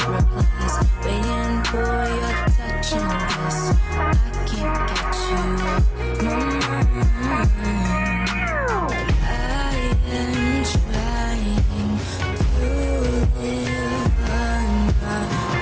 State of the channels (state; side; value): identical; both; correlation 1.00